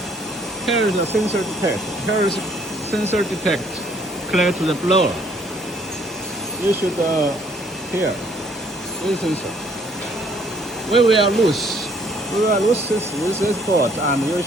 here is the sensor detect. Here is sensor detect clear to the blower. You should here this sensor. We will lose this board, and you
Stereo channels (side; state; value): both; normal; correlation 0.63